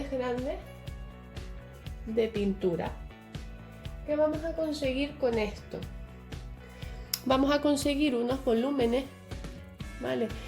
grandes de pintura. ¿Qué vamos a conseguir con esto? Vamos a conseguir unos volúmenes, ¿vale?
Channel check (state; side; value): identical; both; correlation 1.00